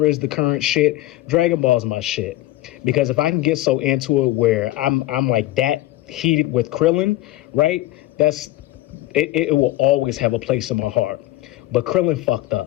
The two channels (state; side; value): quieter; right; 16.4 dB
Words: is the current shit, Dragon Ball is my shit. Because if I can get so into it where I'm like that heated with Krillin, right? It will always have a place in my heart. But Krillin fucked